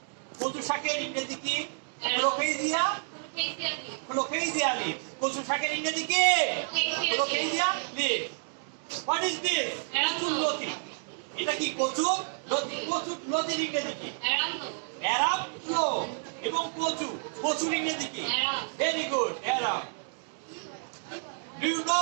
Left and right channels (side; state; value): left; silent; digital silence